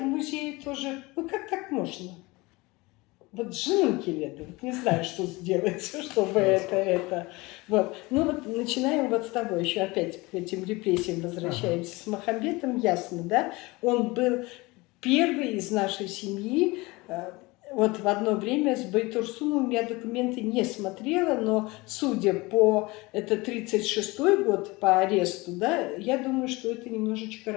музее тоже, ну как так можно? Вот женунки лето, вот не знаю, что сделать, чтобы это. Вот. Ну вот начинаем вот с того, еще опять к этим репрессиям возвращаемся. С Махамбетом ясно, да? Он был первый из нашей семьи. Вот в одно время с Байтурсуновым я документы не смотрела, но судя по, это 36-й год по аресту, да, я думаю, что это немножечко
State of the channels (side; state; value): right; quieter; 23.0 dB